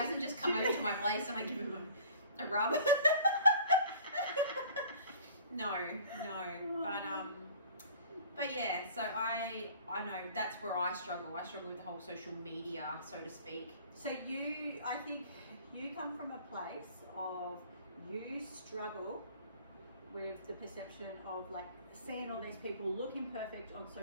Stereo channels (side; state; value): both; inverted; correlation -0.49